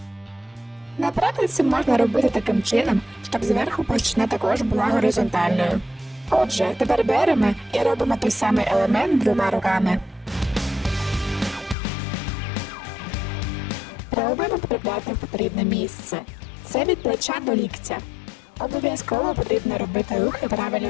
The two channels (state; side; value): drops out; right; at 11.8 s